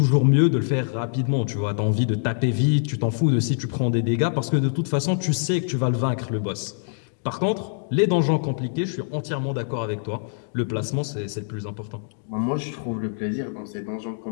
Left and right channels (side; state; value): right; silent; digital silence